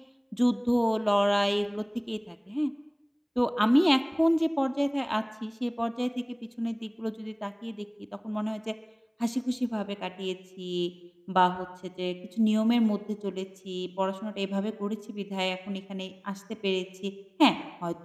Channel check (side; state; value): both; identical; correlation 1.00